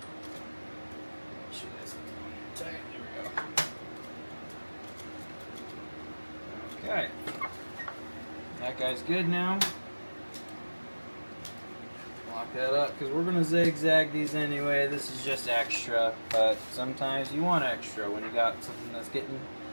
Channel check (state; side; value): inverted; both; correlation -1.00